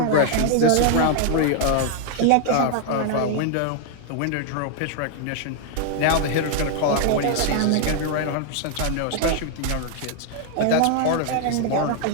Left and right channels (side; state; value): both; different; correlation 0.00